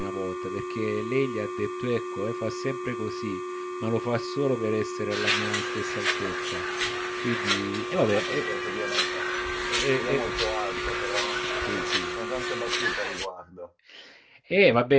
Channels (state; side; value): identical; both; correlation 1.00